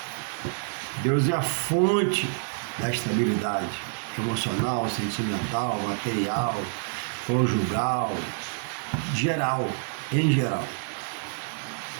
Deus é a fonte da estabilidade emocional, sentimental, material, conjugal, geral, em geral.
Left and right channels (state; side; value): silent; left; digital silence